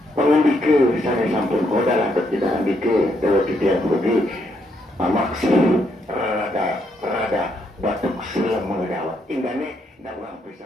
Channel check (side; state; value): both; normal; correlation 0.75